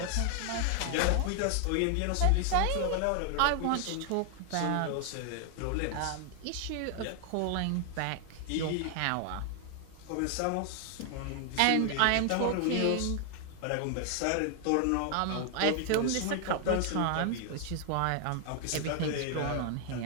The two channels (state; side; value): different; both; correlation 0.00